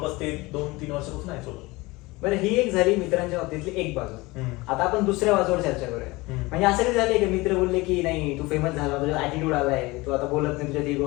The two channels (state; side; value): quieter; right; 22.2 dB